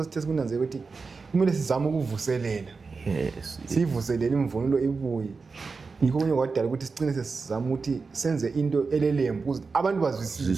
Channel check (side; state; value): left; quieter; 4.5 dB